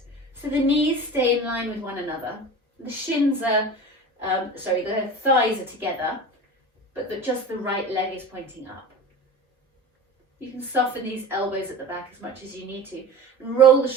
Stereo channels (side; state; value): both; normal; correlation 0.34